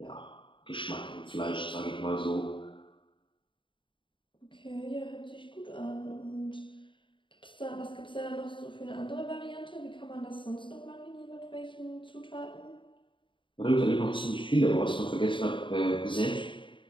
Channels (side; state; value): right; late; 0.24 ms